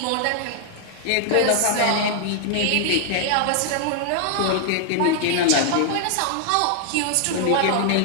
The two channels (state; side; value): different; both; correlation 0.00